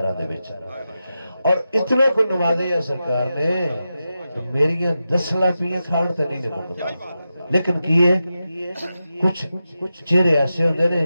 دے وچ اور اتنا کو نوازے ہے سرکار نے میری 10 لاپیاں کھاڑ تے نہیں مکدا لیکن کیے کچھ چہرے ایسے ہوندے نے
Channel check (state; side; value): inverted; both; correlation -0.90